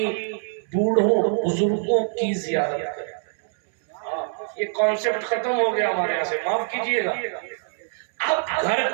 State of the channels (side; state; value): left; silent; 63 dB below the other